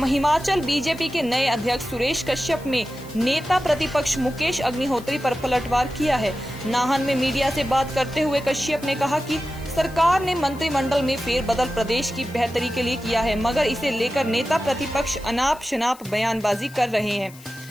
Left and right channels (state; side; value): noise; left; hiss, 22 dB below the sound